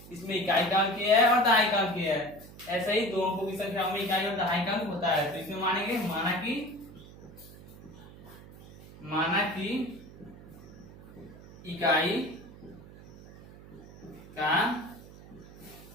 इसमें इकाई का अंक किया है और दहाई का अंक किया है, ऐसे ही दो अंकों की संख्याओं में इकाई और दहाई का अंक होता है। तो इसमें मानेंगे माना कि इकाई का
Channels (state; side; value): noise; right; hum, 18 dB below the sound